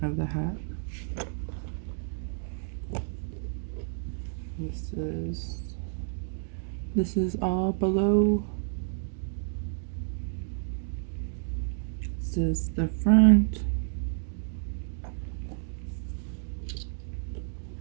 of the hat. This is all below. This is the front.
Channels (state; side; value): silent; left; digital silence